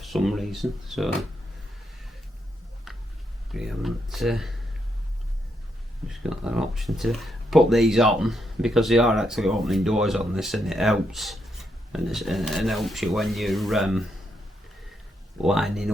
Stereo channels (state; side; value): normal; both; correlation 0.80